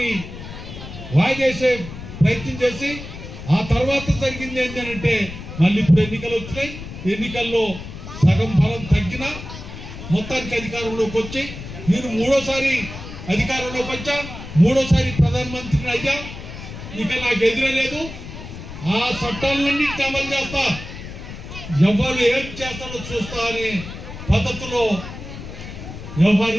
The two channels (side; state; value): left; noise; rumble, 11 dB below the sound